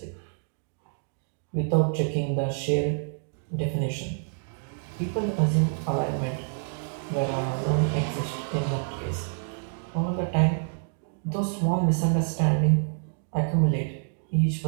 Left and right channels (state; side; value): silent; left; digital silence